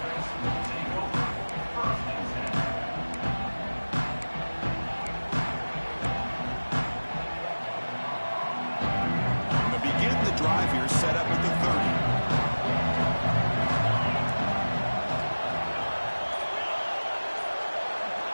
Drive here set up at the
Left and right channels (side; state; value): both; inverted; correlation -1.00